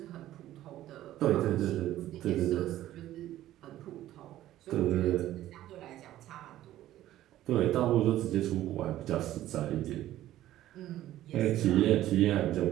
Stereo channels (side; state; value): left; quieter; 13.8 dB